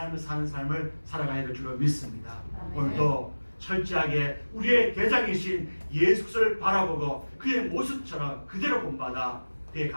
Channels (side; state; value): both; inverted; correlation -1.00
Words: 살아가야 될 줄로 믿습니다. 오늘도 철저하게 우리의 대장이신 예수 그리스도를 바라보고 그의 모습처럼 그대로 본받아 그의